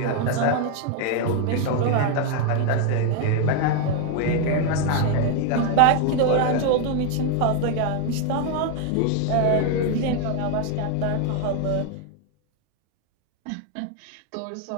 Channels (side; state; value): both; different; correlation 0.01